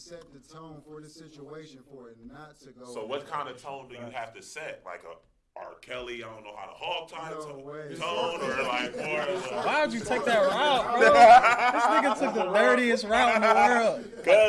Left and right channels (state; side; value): identical; both; correlation 1.00